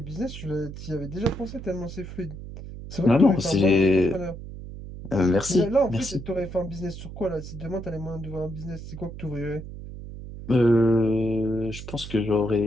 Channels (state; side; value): noise; right; hum, 11 dB below the sound